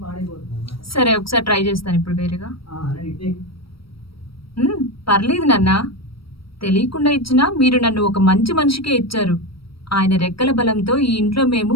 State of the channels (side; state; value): right; late; 0.75 ms